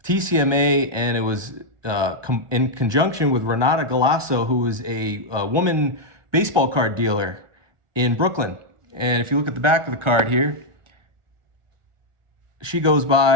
Tcma, and it was in conjunction with Renata Galasso, who is a woman baseball card dealer in Brooklyn. And if you look at the back of the card here, she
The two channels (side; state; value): left; late; 1.4 ms